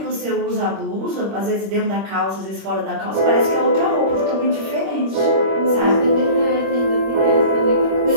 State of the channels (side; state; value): left; late; 26 ms